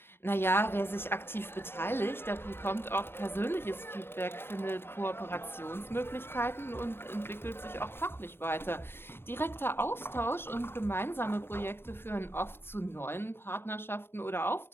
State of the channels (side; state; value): right; late; 0.11 ms